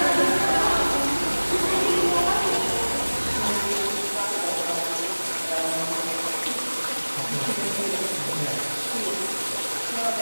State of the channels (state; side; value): inverted; both; correlation -1.00